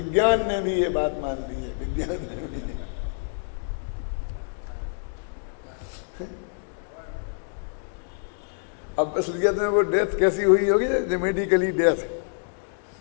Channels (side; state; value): right; silent; digital silence